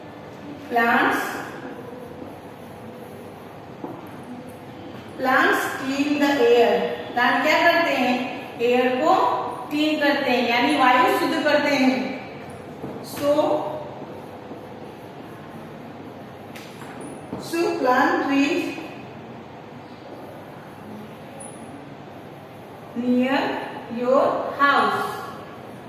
plants clean the air. Plant क्या करते हैं, एयर को क्लीन करते हैं यानी वायु शुद्ध करते हैं. So plant trees near your house.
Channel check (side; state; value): both; identical; correlation 1.00